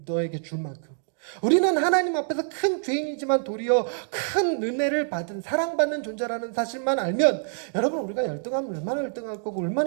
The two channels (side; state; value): left; silent; digital silence